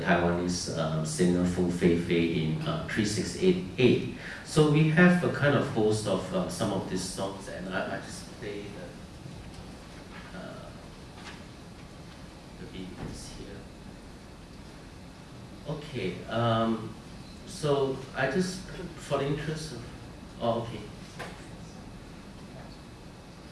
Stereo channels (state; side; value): identical; both; correlation 1.00